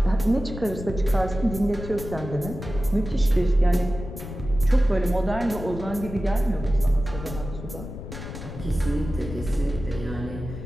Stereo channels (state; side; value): noise; left; rumble, 10 dB below the sound